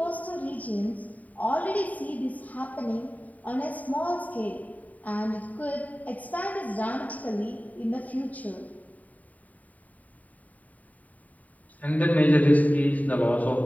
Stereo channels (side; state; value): right; late; 0.072 ms